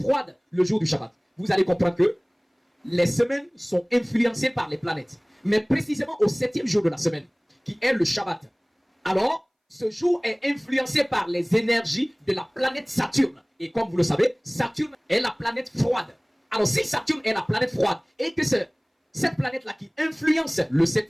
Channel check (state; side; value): identical; both; correlation 1.00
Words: le jour du Shabbat? Vous allez comprendre que les semaines sont influencées par les planètes. Mais précisément au 7e jour de la semaine, qui est le Shabbat. Alors, ce jour est influencé par les énergies de la planète Saturne. Et comme vous le savez, Saturne est la planète froide. Alors si Saturne est la planète froide et que c'est cette planète-là qui influence le